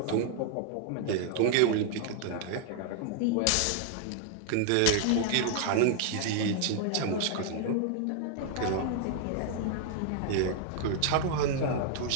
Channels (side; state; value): both; different; correlation 0.00